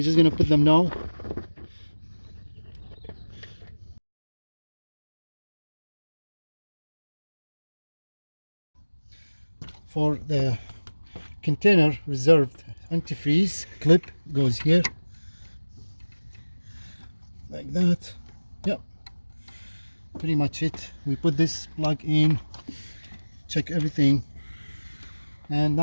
just gonna put them now. For the container reserved antifreeze clip goes here like that. Yep, pretty much it. We put this plug in, check everything, and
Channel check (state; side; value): inverted; both; correlation -1.00